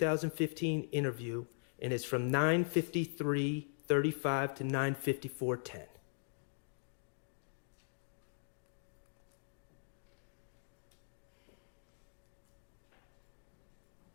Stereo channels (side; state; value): right; silent; digital silence